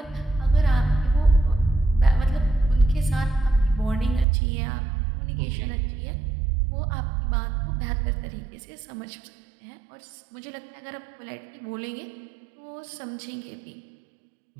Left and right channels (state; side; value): drops out; left; at 4.2 s